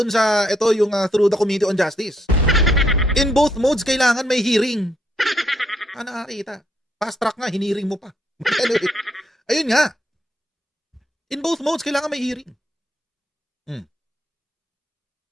sa ito yung through the Committee on Justice. In both modes kailangan may hearing. Nakakita. Fast track nga, hiniring mo pa. Anyway, ayun nga. In both modes kailangan may hearing.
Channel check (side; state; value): both; normal; correlation 0.75